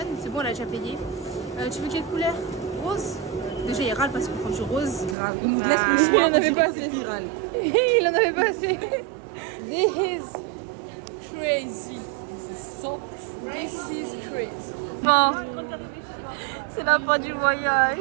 C'est bon, elle a déjà payé. Tu veux quelle couleur? Rose. Déjà, il râle parce qu'on prend du rose. Grave. Il nous laisse le choix. il en avait pas assez. Il râle. Il en avait pas assez. This is crazy. This is crazy. Bon, c'est la fin du voyage.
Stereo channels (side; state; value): left; drops out; at 5.2 s